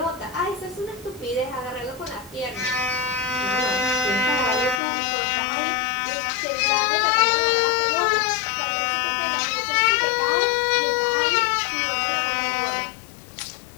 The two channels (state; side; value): drops out; right; at 4.8 s